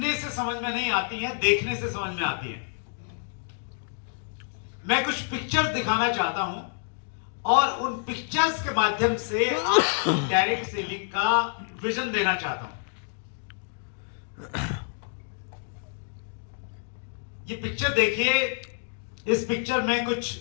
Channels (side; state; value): right; silent; digital silence